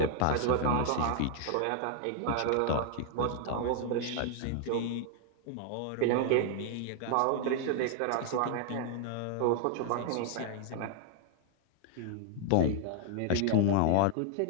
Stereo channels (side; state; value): both; different; correlation 0.00